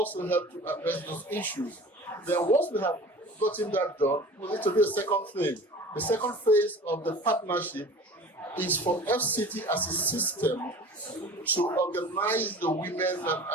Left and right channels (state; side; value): normal; both; correlation 0.40